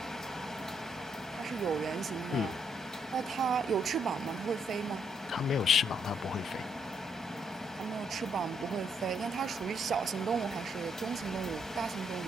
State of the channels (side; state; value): both; normal; correlation 0.74